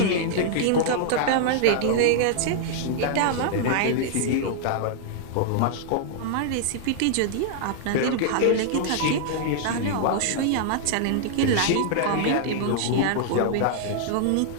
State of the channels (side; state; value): both; different; correlation -0.01